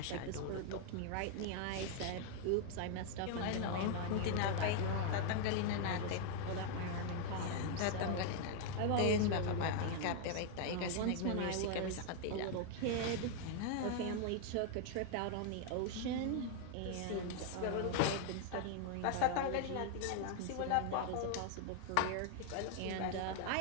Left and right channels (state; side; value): different; both; correlation 0.00